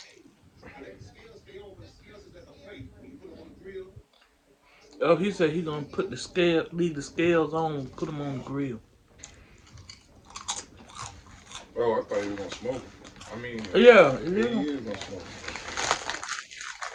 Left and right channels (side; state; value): both; identical; correlation 1.00